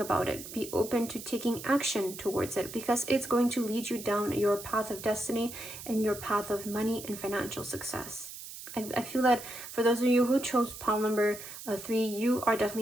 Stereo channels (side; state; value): right; noise; hiss, 12 dB below the sound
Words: it. Be open to taking action towards it, because it's going to lead you down your path of destiny and your path of money and financial success. I feel that for those of you who chose pile number 3, you are